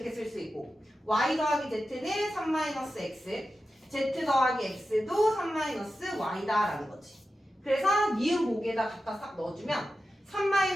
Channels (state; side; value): normal; both; correlation 0.92